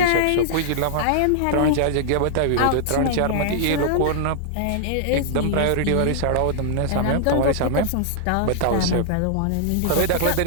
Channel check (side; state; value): both; different; correlation -0.01